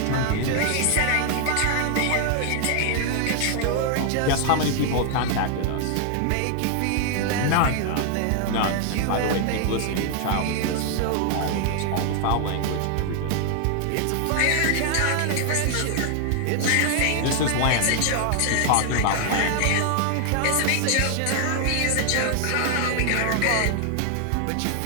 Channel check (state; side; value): different; both; correlation 0.00